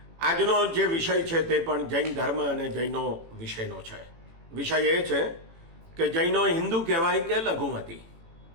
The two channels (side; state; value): left; late; 18 ms